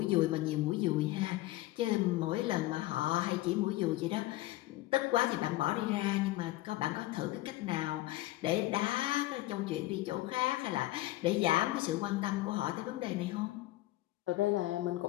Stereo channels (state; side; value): quieter; right; 17.4 dB